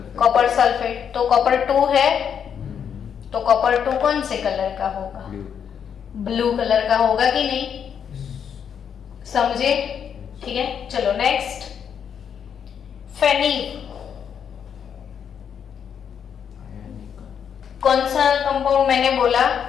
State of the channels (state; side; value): quieter; right; 7.9 dB